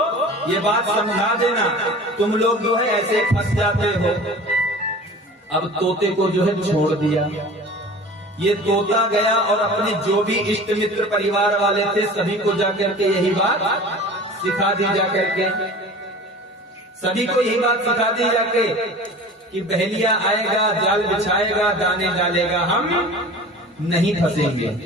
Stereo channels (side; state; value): both; normal; correlation 0.40